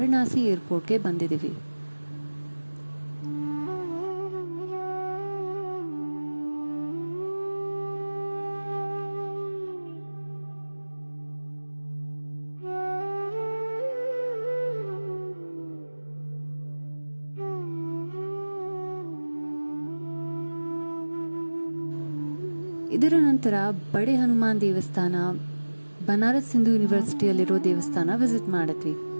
ಏರ್ಪೋರ್ಟ್ಗೆ ಬಂದಿದ್ದೀವಿ. ಇದರ ನಂತರ ಬಡೆ ಹನುಮಾನ್ ದೇವಸ್ಥಾನ, ಬನಾರಸ್ ಹಿಂದೂ ಯೂನಿವರ್ಸಿಟಿಯಲ್ಲಿರೋ ದೇವಸ್ಥಾನ ವಿಸಿಟ್ ಮಾಡಿದ್ವಿ.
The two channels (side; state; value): both; inverted; correlation -1.00